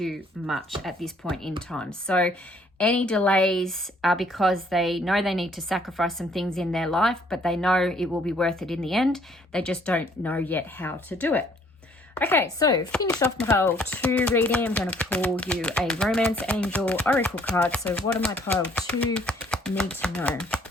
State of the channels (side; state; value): both; normal; correlation 0.62